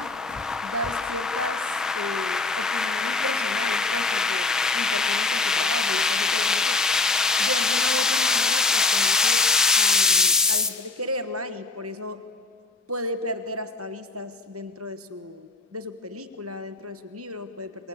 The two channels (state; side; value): quieter; right; 3.4 dB